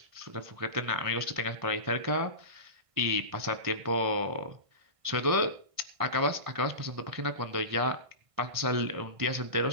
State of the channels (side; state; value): left; late; 1.5 ms